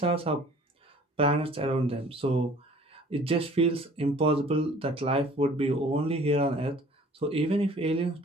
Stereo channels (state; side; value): normal; both; correlation 0.51